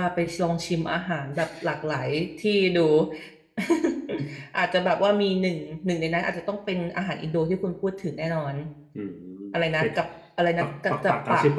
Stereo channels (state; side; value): identical; both; correlation 1.00